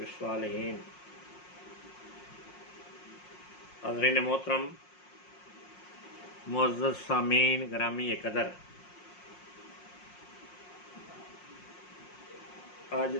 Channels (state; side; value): late; right; 5.6 ms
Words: हज़रीन मोहतरम, मुअज़्ज़ज़ सामीन ग्रामी कदर, अज